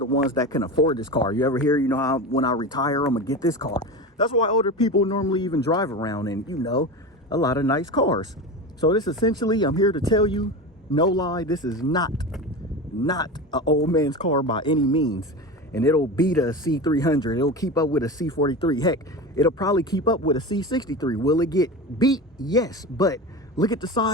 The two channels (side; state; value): both; normal; correlation 0.27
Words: ones that can afford this car. You ever hear, you know, how when I retire, I'm gonna get this car. That's why older people normally even drive around in, you know, a lot of nice cars. So this essentially, I'm here to tell you, no lie, this is not an old man's car by any means. And it'll beat a C300. It'll keep up with a C43. Heck, it'll probably keep up with a C63. Will it get beat? Yes, but look at the